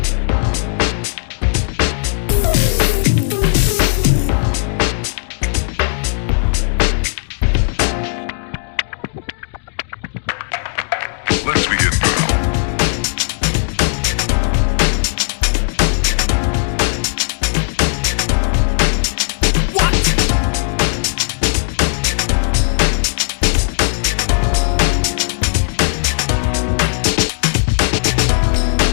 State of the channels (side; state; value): right; silent; 69 dB below the other